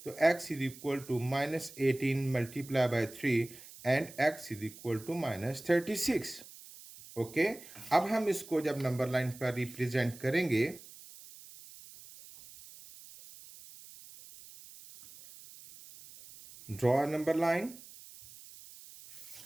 तो x is equal to -18 multiply by 3 and x is equal to -36. Okay. अब हम इसको जब नंबर लाइन पर रिप्रेजेंट करेंगे, draw a number line.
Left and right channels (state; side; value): noise; right; hiss, 18 dB below the sound